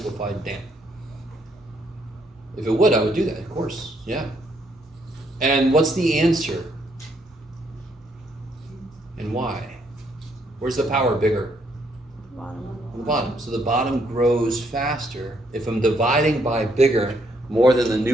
damn. If it would, I would do that, of course, yeah. And what's the answer? And why? Where's the power bigger? On the bottom. So the bottom grows faster. If I'm dividing by bigger, more than the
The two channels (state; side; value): normal; both; correlation 0.72